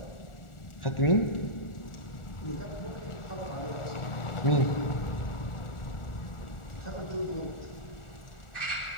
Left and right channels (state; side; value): late; right; 1.4 ms